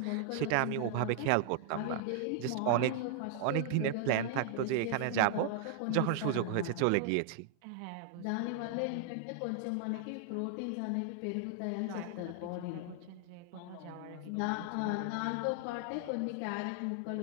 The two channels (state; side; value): different; both; correlation -0.01